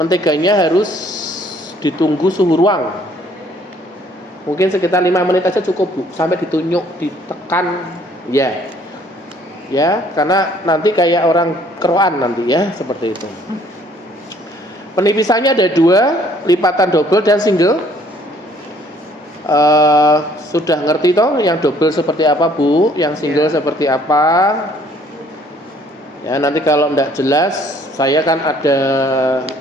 harus ditunggu suhu ruang. Mungkin sekitar 5 menit aja cukup Bu, sampai ditunyuk, ditekan ya, karena nanti kayak orang keroan nanti ya, seperti itu. Penipisannya ada 2, lipatan double dan single. Sudah ngerti toh yang double seperti apa Bu, yang single seperti apa ya. Nanti kalau enggak jelas saya kan ada,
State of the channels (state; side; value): normal; both; correlation 0.60